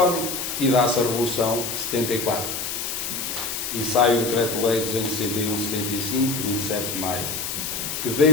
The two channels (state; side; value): noise; left; hiss, 4 dB below the sound